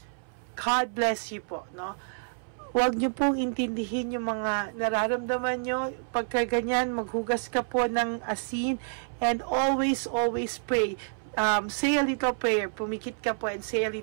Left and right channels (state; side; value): silent; left; 59 dB below the other